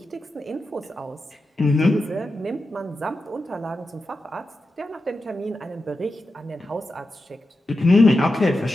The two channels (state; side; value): normal; both; correlation 0.90